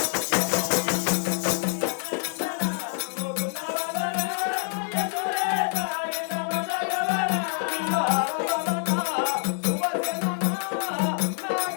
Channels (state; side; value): silent; right; digital silence